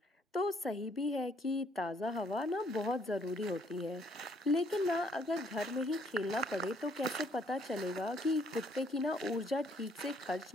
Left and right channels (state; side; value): normal; both; correlation 0.66